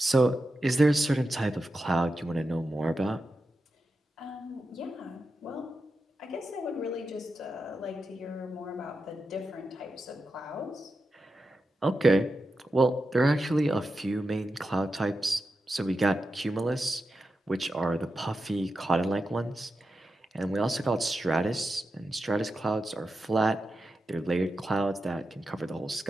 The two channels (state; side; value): normal; both; correlation 0.89